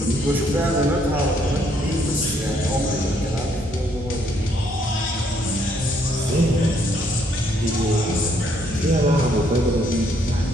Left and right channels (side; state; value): both; normal; correlation 0.69